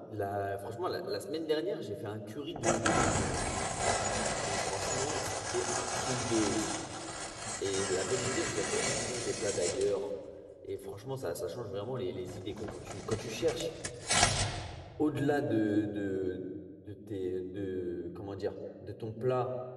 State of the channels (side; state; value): both; identical; correlation 1.00